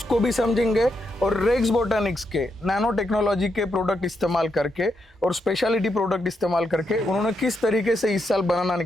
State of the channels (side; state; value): both; normal; correlation 0.81